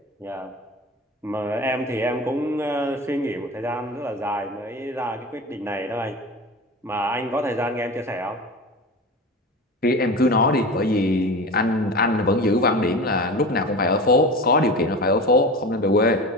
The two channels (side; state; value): both; normal; correlation 0.31